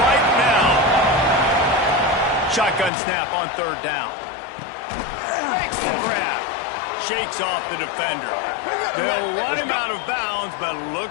right now. Shotgun snap on third down. Makes the grab. Shakes off the defender. They'll run him out of bounds, but look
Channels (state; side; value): drops out; right; at 2.9 s